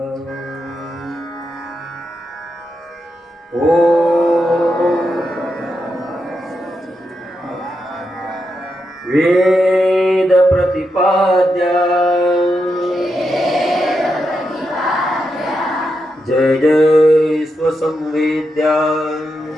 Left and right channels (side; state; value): both; normal; correlation 0.85